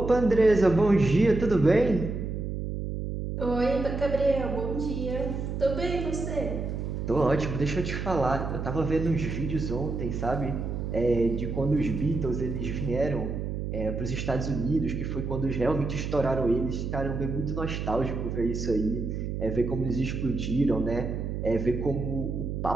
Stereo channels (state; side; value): noise; right; hum, 4 dB below the sound